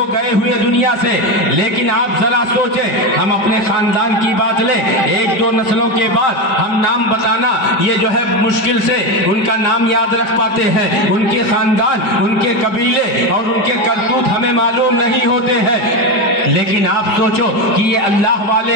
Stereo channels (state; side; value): late; right; 4.9 ms